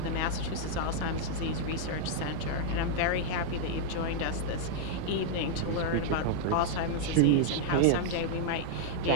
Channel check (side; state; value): both; different; correlation -0.01